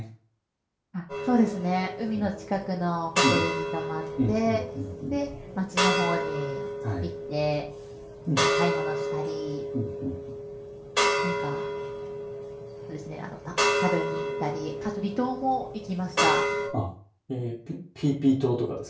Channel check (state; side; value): identical; both; correlation 1.00